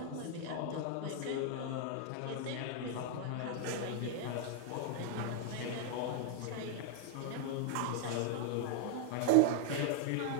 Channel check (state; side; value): different; both; correlation 0.00